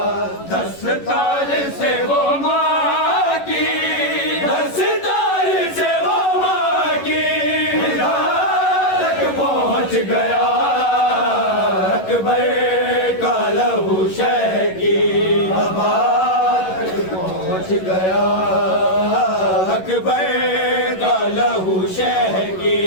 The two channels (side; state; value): right; late; 11 ms